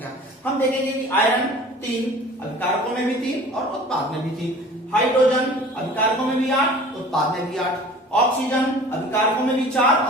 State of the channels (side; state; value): both; normal; correlation 0.44